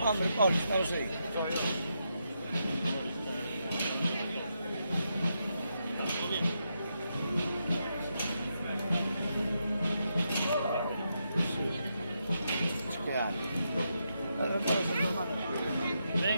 Hombre, Paul, estamos ahí.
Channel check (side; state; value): both; inverted; correlation -0.83